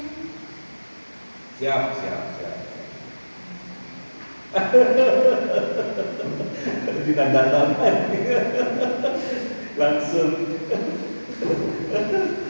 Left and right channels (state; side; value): inverted; both; correlation -1.00